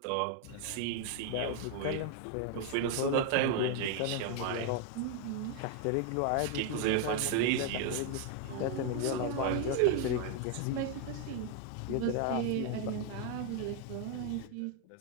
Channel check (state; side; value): different; both; correlation 0.01